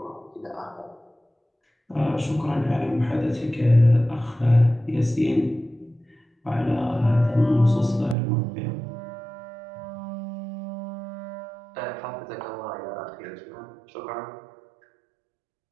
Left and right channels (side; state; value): left; drops out; at 8.2 s